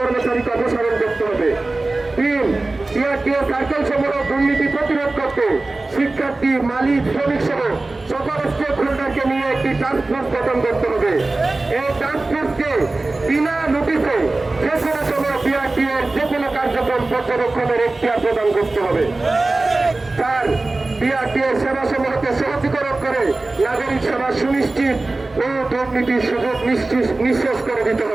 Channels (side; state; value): left; quieter; 3.1 dB